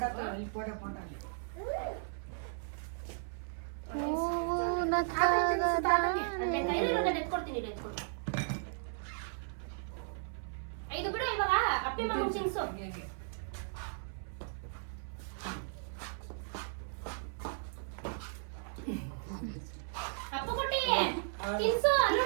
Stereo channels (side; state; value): left; silent; 54 dB below the other